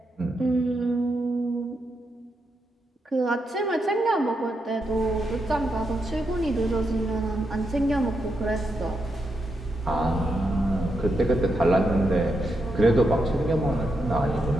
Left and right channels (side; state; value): both; normal; correlation 0.83